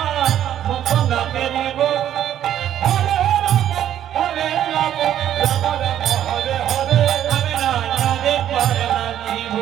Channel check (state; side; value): quieter; left; 11.0 dB